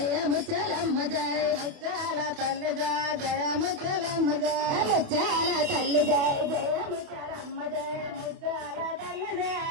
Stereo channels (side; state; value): left; late; 28 ms